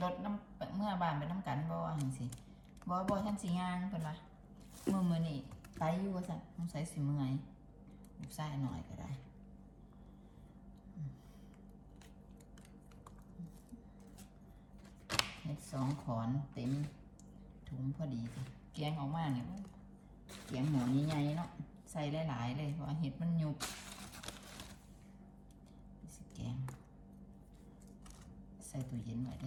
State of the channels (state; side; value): identical; both; correlation 1.00